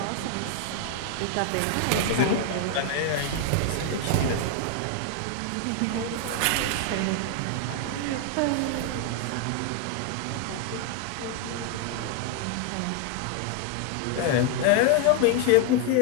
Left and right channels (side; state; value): both; different; correlation 0.00